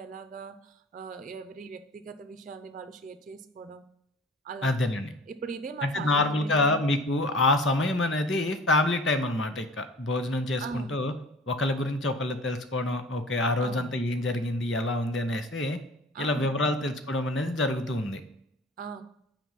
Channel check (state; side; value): normal; both; correlation 0.44